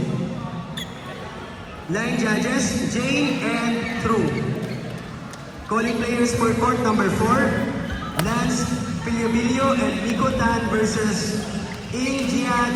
Line judges, Jane and True. Calling players for court number 4, Lance Piliobilio and Nico Tan versus Ing Jia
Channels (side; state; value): both; identical; correlation 1.00